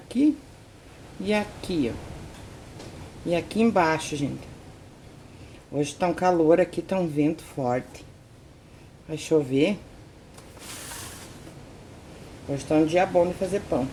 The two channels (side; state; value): both; identical; correlation 1.00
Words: e aqui, ó. E aqui embaixo, gente. Hoje tá um calor aqui, tá um vento forte. Vai chover. Hoje tá um dia bom de fazer pão.